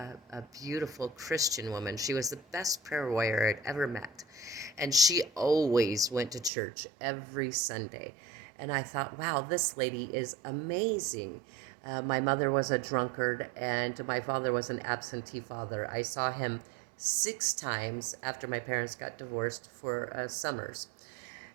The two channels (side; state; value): left; drops out; at 6.5 s